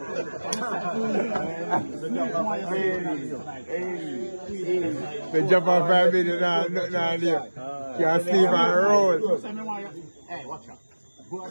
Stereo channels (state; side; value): inverted; both; correlation -1.00